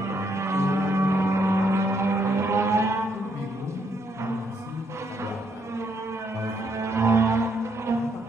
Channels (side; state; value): both; normal; correlation 0.73